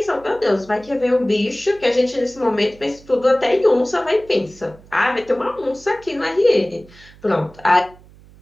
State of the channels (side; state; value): right; noise; hum, 24 dB below the sound